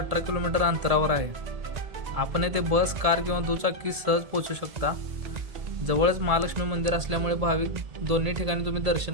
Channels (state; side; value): late; left; 1.7 ms